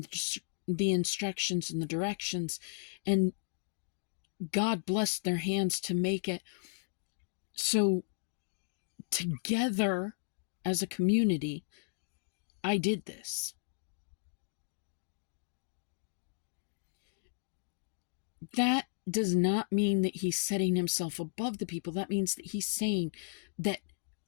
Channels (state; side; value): silent; right; digital silence